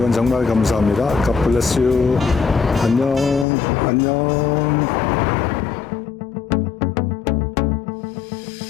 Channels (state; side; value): drops out; right; at 3.5 s